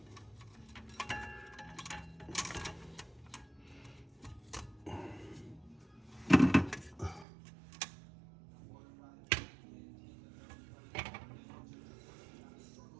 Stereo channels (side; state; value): left; drops out; at 7.2 s